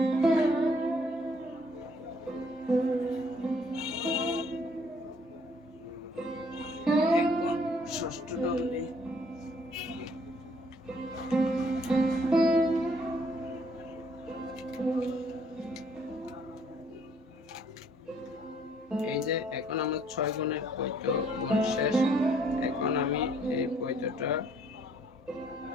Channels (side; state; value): both; normal; correlation 0.63